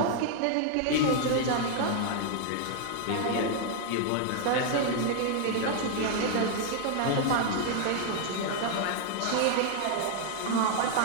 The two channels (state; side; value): different; both; correlation 0.00